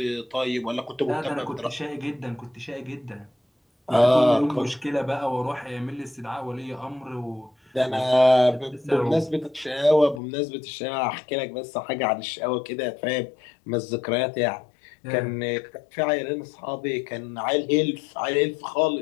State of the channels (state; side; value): drops out; right; at 10.2 s